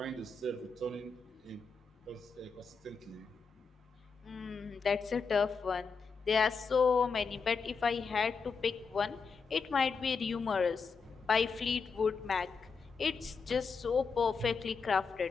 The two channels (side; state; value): right; quieter; 5.0 dB